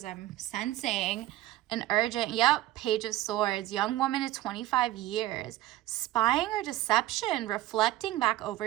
I'm sensing an urgent, Page of Swords, young woman at 25 years, spying or deception, reflecting back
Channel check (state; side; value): quieter; left; 15.6 dB